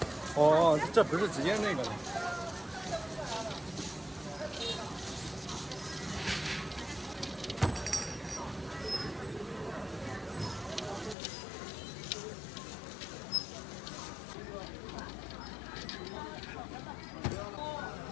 哦，这不是直接那个的。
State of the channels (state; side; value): drops out; right; at 11.2 s